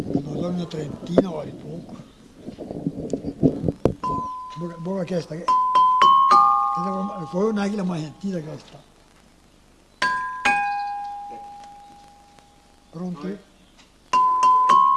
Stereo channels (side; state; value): both; identical; correlation 1.00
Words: sono una trentina vale poco. Buona questa, poi non è che la mai sentita questa. Pronti?